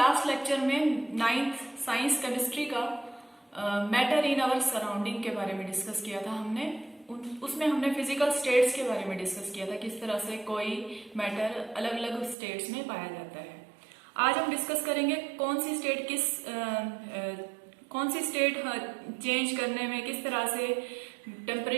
लेक्चर में 9th साइंस केमिस्ट्री का मैटर इन आवर सराउंडिंग के बारे में डिस्कस किया था। उसमें हमने फिजिकल स्टेट्स के बारे में डिस्कस किया था, किस तरह से कोई मैटर अलग अलग स्टेट्स में पाया जाता है। आज हम डिस्कस करेंगे कौन सी स्टेट चेंज करने में किस तरह से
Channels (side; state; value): left; drops out; at 12.4 s